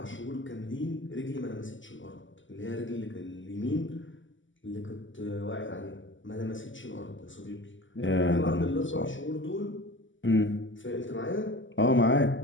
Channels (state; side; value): late; right; 0.55 ms